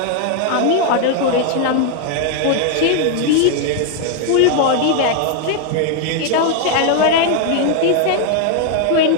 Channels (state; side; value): different; both; correlation 0.00